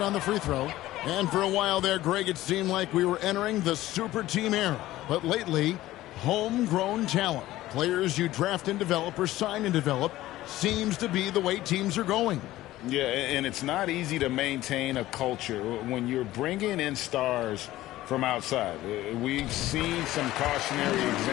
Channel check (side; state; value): right; quieter; 15.8 dB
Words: on the free throw. And for a while there, Greg, it seemed like we were entering the super team era. But lately, homegrown talent, players you draft and develop or sign and develop, seems to be the way teams are going. Yeah, and it's not easy to maintain a culture when you're bringing in stars from outside. We've seen some cautionary